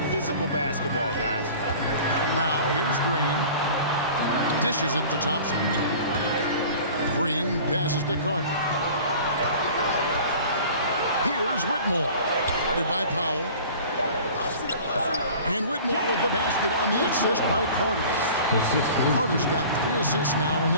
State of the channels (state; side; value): inverted; both; correlation -0.43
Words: physical basketball, guys. Now here's Green. Dishes it to Thompson. Green passes to Carter. Here's Whitmore. Guarded by Powell. And Whitmore with the basket on the assist by Carter. Carter's got 3 assists now in